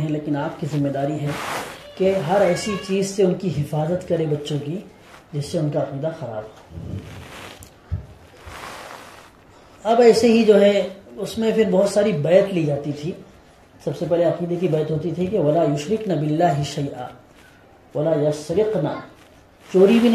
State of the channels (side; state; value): both; identical; correlation 1.00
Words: لیکن آپ کی ذمہ داری ہے کہ ہر ایسی چیز سے ان کی حفاظت کرے بچوں کی جس سے ان کا عقیدہ خراب ہو۔ اب ایسے ہی جو ہے اس میں پھر بہت ساری بیعت لی جاتی تھی۔ سب سے پہلے عقیدے کی بیعت ہوتی تھی کہ وَلَا يُشْرِكْنَ بِاللَّهِ شَيْئًا وَلَا يَسْرِقْنَ، چوری بھی